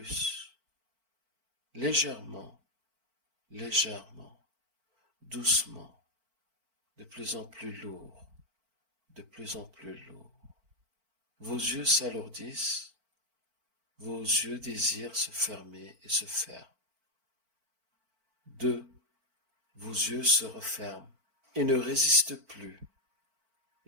légèrement, légèrement, doucement, de plus en plus lourd, de plus en plus lourd. Vos yeux s'alourdissent, vos yeux désirent se fermer et se ferment. 2. Vos yeux se referment et ne résistent plus,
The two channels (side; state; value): left; late; 4.5 ms